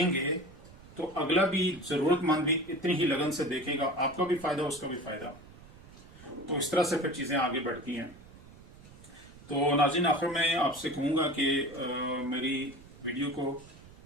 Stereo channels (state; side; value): noise; right; rumble, 20 dB below the sound